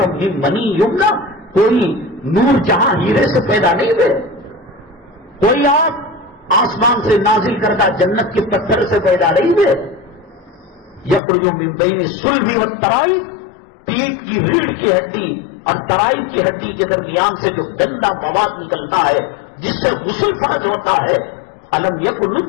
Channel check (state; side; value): drops out; right; at 11.2 s